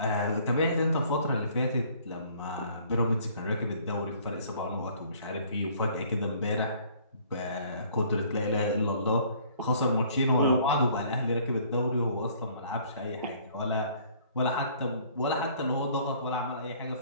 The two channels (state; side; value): inverted; both; correlation -0.57